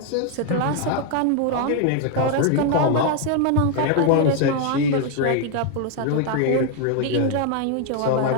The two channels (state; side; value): different; both; correlation 0.00